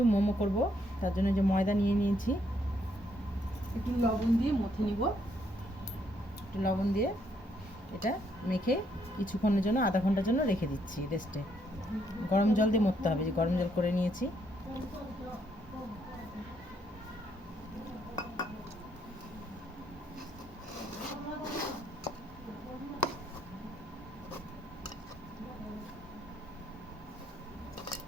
মোমো করব। তার জন্য যে ময়দা নিয়ে নিয়েছি, একটু লবণ দিয়ে মথে নিব। একটু লবণ দিয়ে এটা মেখে কিছুক্ষণের জন্য, আধা ঘন্টার জন্য রেখে দিচ্ছি রেস্টে। গরম জল দিয়ে মথতে হবে, যে গরম জল করে নিয়েছি।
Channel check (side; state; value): both; normal; correlation 0.73